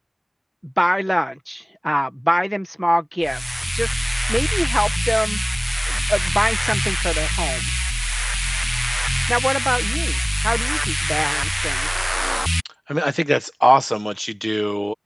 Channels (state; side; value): identical; both; correlation 1.00